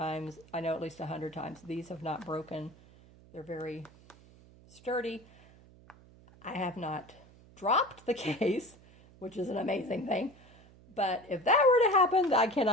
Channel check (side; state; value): right; noise; hum, 24 dB below the sound